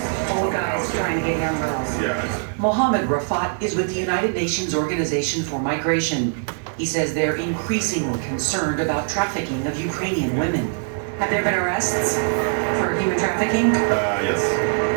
Old guys trying to get young girls. yeah. Mohammed Rafat is with the United Nations Organization for Migration. He says they're increasingly concerned about trafficking of Ukrainian women. Have there been arrests for human trafficking? Yes,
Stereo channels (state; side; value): silent; left; 56 dB below the other